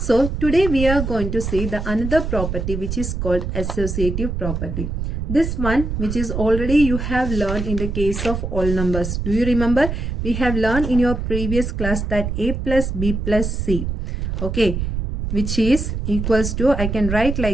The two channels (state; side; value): noise; right; rumble, 3 dB below the sound